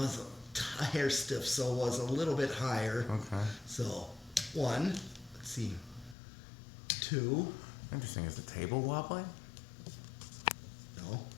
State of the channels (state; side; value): drops out; right; at 6.2 s